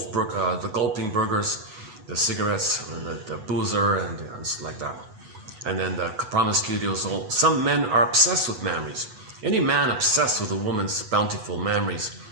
gulping burgers, the cigarettes, the boozer, and like that. And then the promiscuity was all. Some men are obsessed with memories. Any man obsessed with a woman's bountiful memories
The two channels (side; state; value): left; late; 8.1 ms